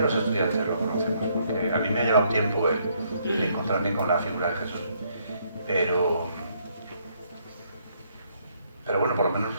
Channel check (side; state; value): both; inverted; correlation -0.70